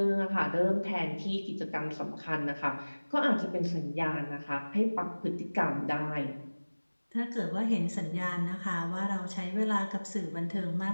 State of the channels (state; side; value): inverted; both; correlation -1.00